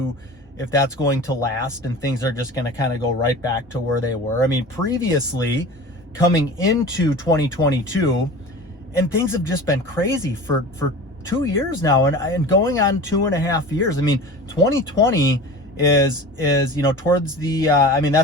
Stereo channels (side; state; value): both; normal; correlation 0.36